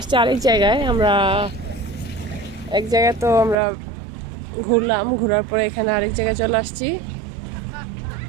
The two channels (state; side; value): drops out; left; at 3.6 s